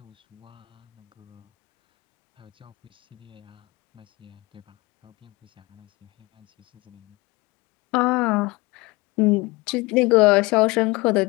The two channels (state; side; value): quieter; right; 23.2 dB